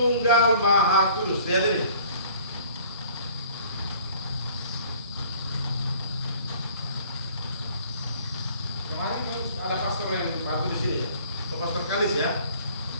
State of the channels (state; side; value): inverted; both; correlation -0.53